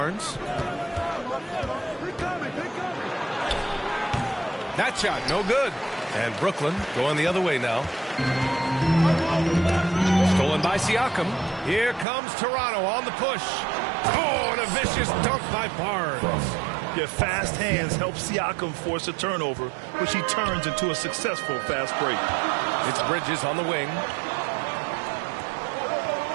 That shot, no good. And Brooklyn going the other way now. Stolen Stolen by Siakam. Here comes Toronto on the push. Oh, and a vicious dunk by Barnes. Your fast hands help Siakam force a turnover, which he turns into a successful fast break. It's Bridges on the wing.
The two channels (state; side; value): drops out; left; at 12.1 s